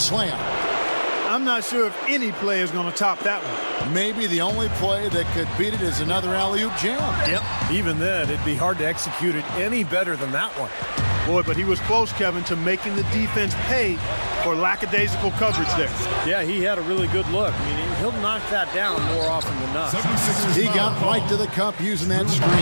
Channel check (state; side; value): inverted; both; correlation -1.00